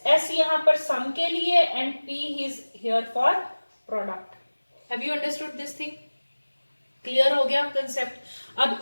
S यहाँ पर सम के लिए and P is here for product. Have you understood this thing? Clear हो गया concept? अब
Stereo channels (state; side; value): inverted; both; correlation -1.00